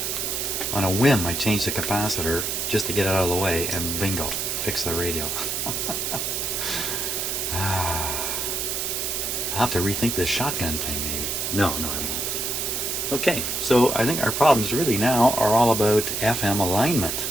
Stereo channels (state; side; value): noise; right; hiss, 1 dB below the sound